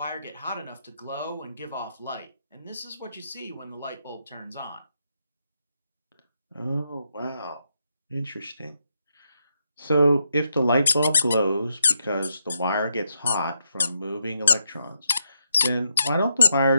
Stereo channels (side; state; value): both; inverted; correlation -0.80